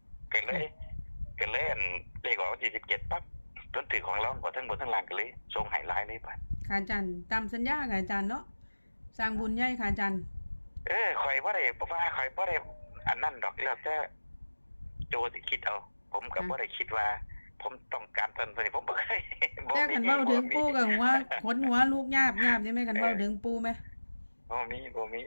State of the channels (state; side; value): inverted; both; correlation -1.00